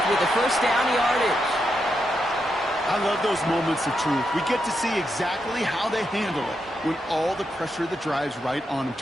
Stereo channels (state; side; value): normal; both; correlation 0.84